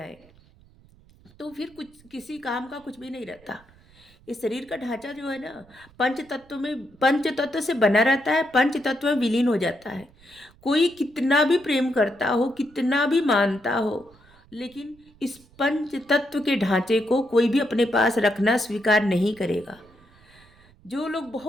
तो फिर कुछ किसी काम का कुछ भी नहीं रहता। इस शरीर का ढांचा जो है ना, पंच तत्व से बना रहता है, पंच तत्व में विलीन हो जाता है। कोई कितना भी प्रेम करता हो, कितना भी मानता हो, लेकिन इस पंच तत्व के ढांचे को कोई भी अपने पास रखना स्वीकार नहीं करेगा। जो लोग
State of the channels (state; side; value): noise; right; rumble, 28 dB below the sound